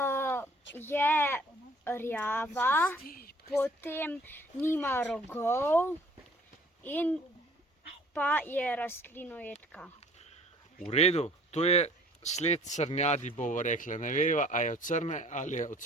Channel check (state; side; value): normal; both; correlation 0.54